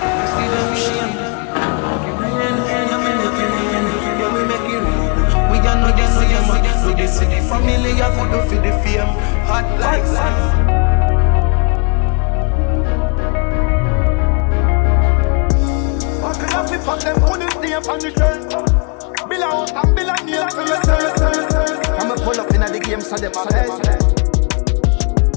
see them shame. Rain, I'm in the rain, yeah, we make it rain. We are not the same, we the city family, I could do for the fame. Hot like sun. Fuck them, put this name on the shelf. Bill a house and bill a name for yourself. I'ma pull up in the game so them a best.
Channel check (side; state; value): right; quieter; 35.6 dB